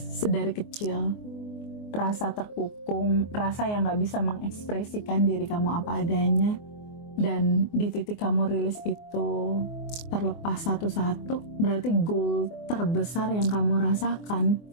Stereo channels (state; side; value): late; right; 24 ms